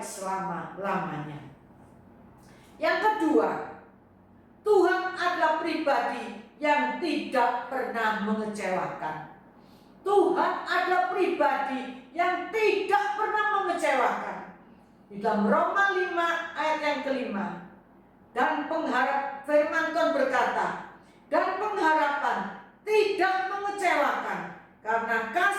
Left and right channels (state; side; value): identical; both; correlation 1.00